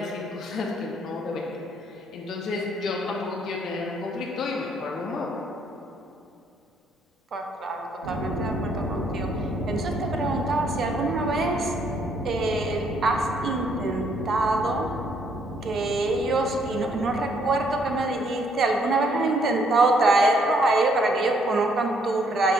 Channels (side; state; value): both; normal; correlation 0.68